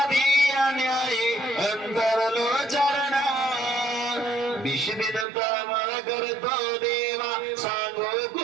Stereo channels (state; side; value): drops out; left; at 5.2 s